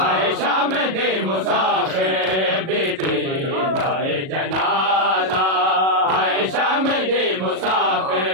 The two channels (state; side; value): late; left; 37 ms